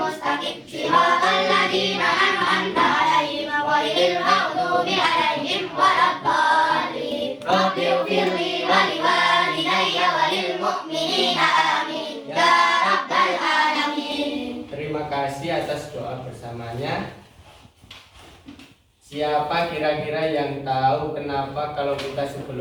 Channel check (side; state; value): both; identical; correlation 1.00